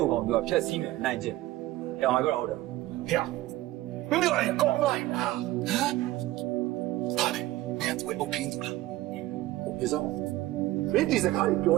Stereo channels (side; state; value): left; quieter; 16.9 dB